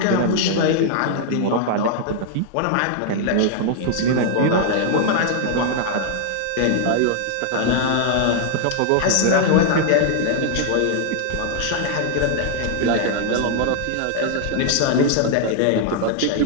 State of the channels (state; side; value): different; both; correlation 0.00